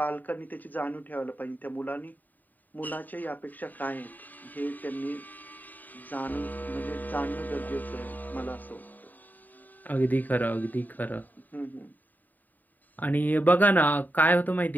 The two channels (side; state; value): right; late; 0.086 ms